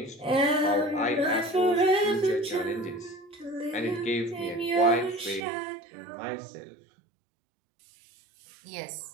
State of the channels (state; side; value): drops out; left; at 5.4 s